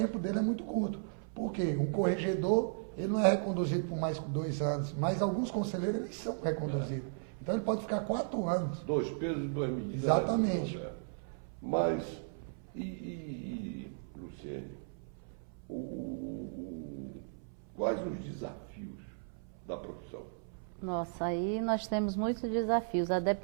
dele é muito curto. Por quê? Um corregedor, ele não é reconduzido por mais que 2 anos, mas alguns conselheiros, eles são reconduzidos. Então ele pode ficar 4 anos. 2 pesos e 2 medidas. Exatamente. Mas, Luciene, quais os desafios da profissão? Nossa, aí nós temos muitos desafios. A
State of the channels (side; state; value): left; silent; 54 dB below the other